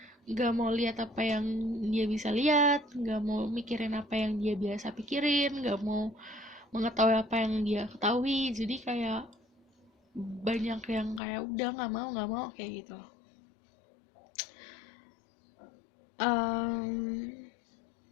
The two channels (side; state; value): right; drops out; at 11.2 s